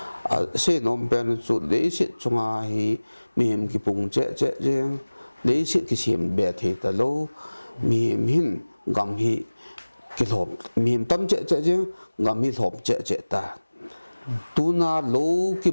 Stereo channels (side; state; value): both; inverted; correlation -1.00